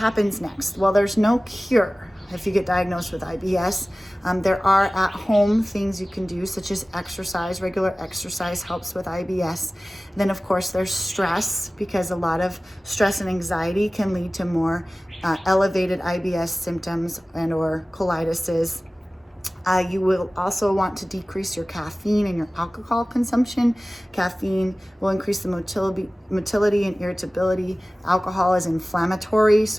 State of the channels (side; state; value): both; normal; correlation 0.97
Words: next? Well, there's no cure if you get diagnosed with IBS. There are at-home things you can do, such as exercise. Regular exercise helps with IBS. Then, of course, there's stress, because a lot of stress and anxiety can lead to more elevated IBS symptoms and or colitis. You will also want to decrease your caffeine and your alcohol consumption. Caffeine will increase the motility and irritability. Alcohol is inflammatory,